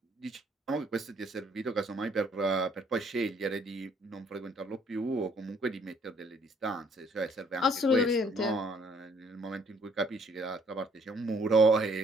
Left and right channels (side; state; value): both; normal; correlation 0.63